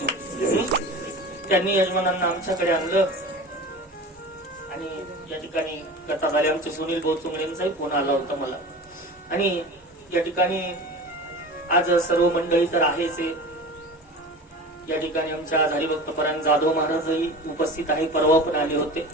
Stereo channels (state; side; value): normal; both; correlation 0.34